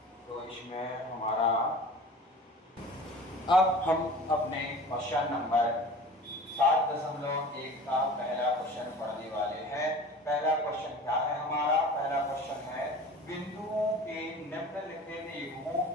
तो इसमें हमारा अब हम अपने क्वेश्चन नंबर 7.1 का पहला क्वेश्चन पढ़ने वाले हैं। पहला क्वेश्चन क्या है हमारा? पहला क्वेश्चन है बिंदुओं के निम्नलिखित युग्मों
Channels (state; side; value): normal; both; correlation 0.40